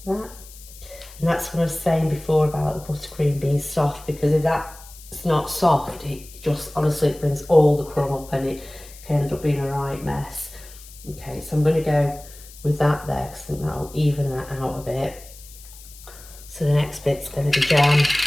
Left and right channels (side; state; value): left; noise; hiss, 19 dB below the sound